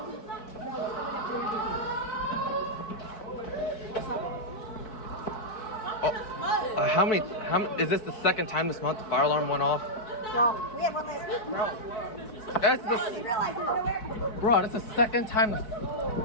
How many, is this the second time this month the fire alarm went off? Well, we have one last week, bro. Bro, that's the second time.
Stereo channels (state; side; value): late; right; 4.6 ms